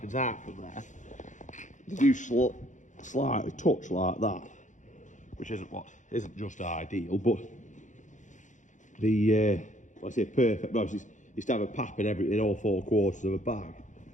out from there. They do slightly touch like that, which isn't just ideal, but the I say perfect. No, it's to have a pap in all 4 quarters of a bag.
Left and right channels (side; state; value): right; late; 0.36 ms